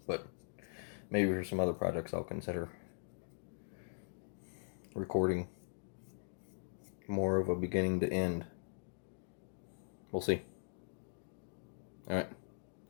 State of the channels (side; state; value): right; silent; digital silence